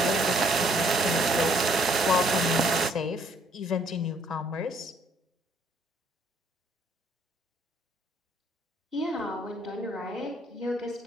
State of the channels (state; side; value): normal; both; correlation 0.65